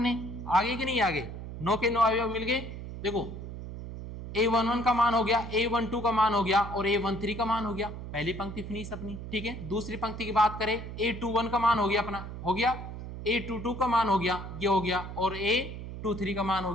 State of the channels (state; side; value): noise; right; hum, 9 dB below the sound